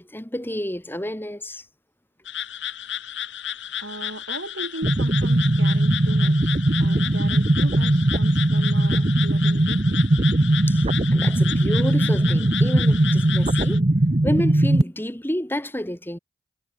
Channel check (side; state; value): both; normal; correlation 0.88